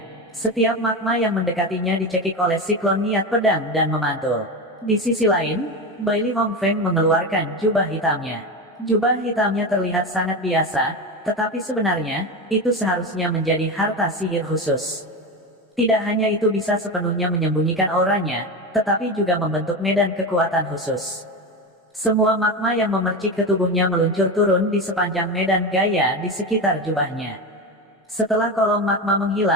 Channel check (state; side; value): normal; both; correlation 0.20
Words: Setiap magma yang mendekatinya dicekik oleh siklon niat pedang dan memantul. Di sisi lain, Bailey Hongfeng mengeluarkan jubah hitamnya. Jubah hitamnya terlihat sangat biasa, tetapi sebenarnya, itu seharusnya menjadi harta sihir khusus. Tidak hanya itu bisa sepenuhnya menyembunyikan auranya, tetapi juga membentuk medan kekuatan khusus. Semua magma yang memercik ke tubuhnya meluncur turun di sepanjang medan gaya di sekitar jubahnya. Setelah kolom magma